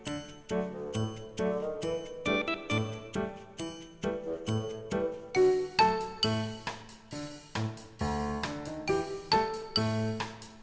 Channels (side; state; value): both; identical; correlation 1.00